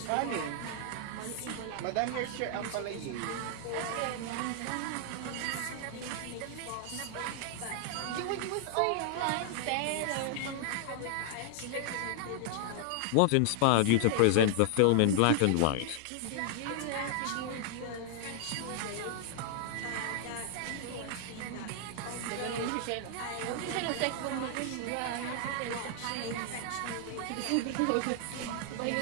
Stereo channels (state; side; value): different; both; correlation 0.00